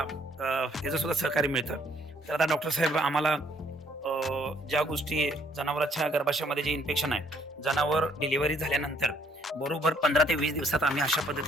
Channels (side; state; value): both; normal; correlation 0.65